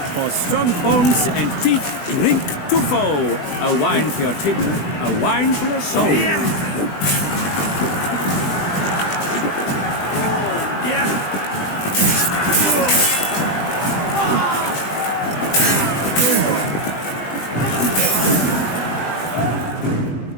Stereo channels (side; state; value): right; late; 20 ms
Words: For strong bones and feet, drink Tuffo. A wine for your table, a wine for your soul.